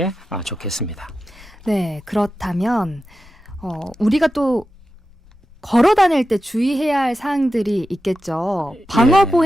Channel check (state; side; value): normal; both; correlation 0.92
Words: 좋겠습니다. 네, 그렇다면 우리가 또 걸어 다닐 때 주의해야 할 사항들이 있겠죠.